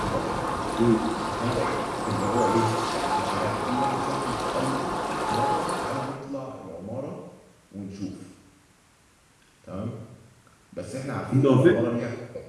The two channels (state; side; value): identical; both; correlation 1.00